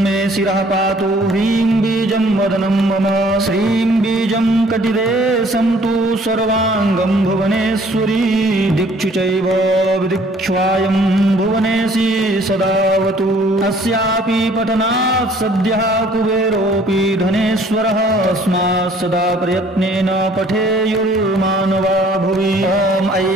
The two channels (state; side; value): normal; both; correlation 0.57